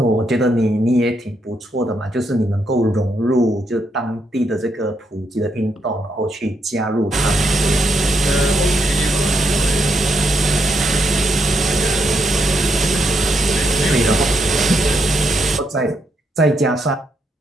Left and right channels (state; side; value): normal; both; correlation 0.79